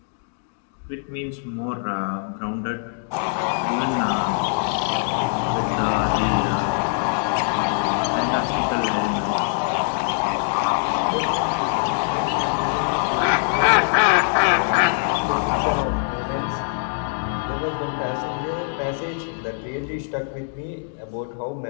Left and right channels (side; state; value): right; silent; digital silence